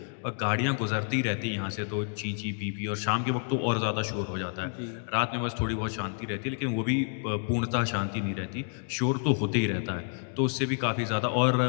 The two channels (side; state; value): right; silent; 58 dB below the other